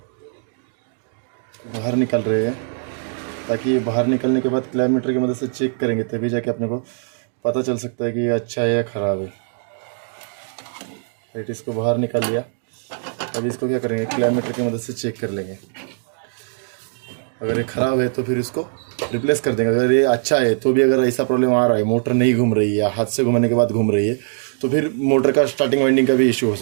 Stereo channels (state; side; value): silent; left; digital silence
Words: बाहर निकाल रहे हैं, ताकि बाहर निकलने के बाद क्लैमीटर की मदद से चेक करेंगे, तभी जाके अपने को पता चल सकता है कि ये अच्छा है या ख़राब है। राइट, इसको बाहर निकाल लिया। अभी इसको क्या करेंगे, क्लैमीटर की मदद से चेक कर लेंगे। अगर ये ख़राब है तो फिर इसको रिप्लेस कर देंगे। अगर ये अच्छा है तो भी अगर ऐसा प्रॉब्लम आ रहा है, मोटर नहीं घूम रही है या हाथ से घुमाने के बाद घूम रही है, तो फिर मोटर का स्टार्टिंग वाइंडिंग का भी इशू हो